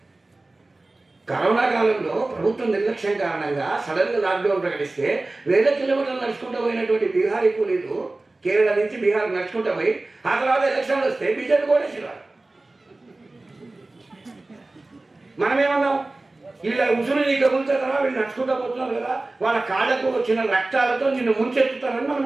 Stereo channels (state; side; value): quieter; left; 3.0 dB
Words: కరోనా కాలంలో ప్రభుత్వం నిర్లక్ష్యం కారణంగా సడన్గా లాక్డౌన్ ప్రకటిస్తే వేల కిలోమీటర్లు నడుచుకుంటూ పోయినటువంటి బీహారీ కూలీలు కేరళ నుంచి బీహార్ నడుచుకుంటూ పోయి ఆ తర్వాత ఎలక్షన్లు వస్తే బీజేపీ కోటేశ్వరాలు. మనమేమన్నాం? వీళ్ళ ఉసురు నీ కబులుతారా, వీళ్ళు నడుచుకుంటూ పోతున్నారు కదా, వాళ్ళ కాళ్ళకు వచ్చిన రక్తాలతో నిన్ను ముంచెత్తుతారని